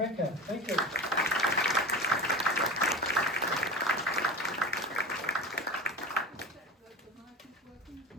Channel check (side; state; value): both; normal; correlation 0.30